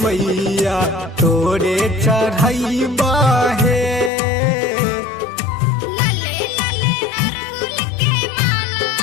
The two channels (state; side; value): drops out; right; at 4.1 s